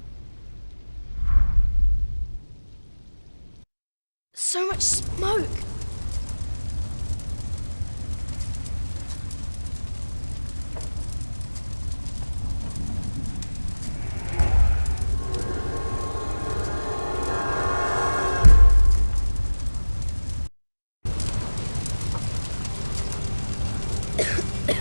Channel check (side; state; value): both; inverted; correlation -1.00